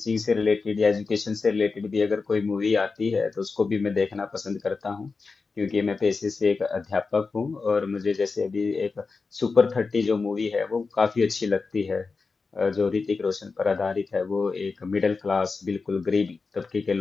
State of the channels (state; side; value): quieter; right; 4.4 dB